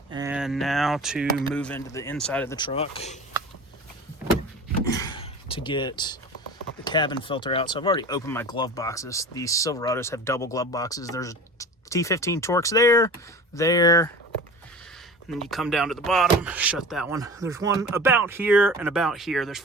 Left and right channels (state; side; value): normal; both; correlation 0.37